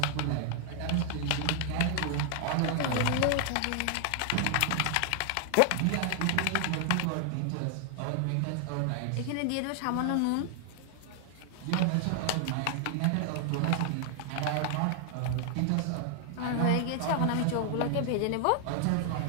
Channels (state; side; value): different; both; correlation 0.00